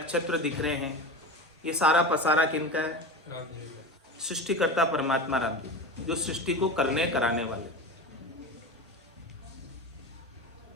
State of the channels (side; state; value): both; normal; correlation 0.27